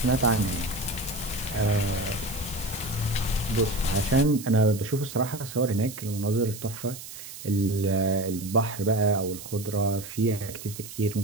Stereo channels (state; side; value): noise; right; hiss, 12 dB below the sound